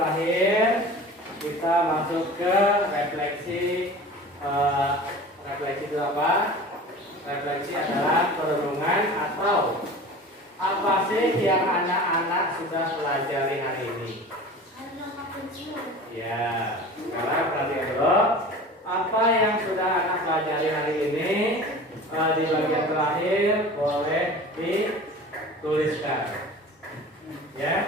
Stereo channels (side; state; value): both; normal; correlation 0.38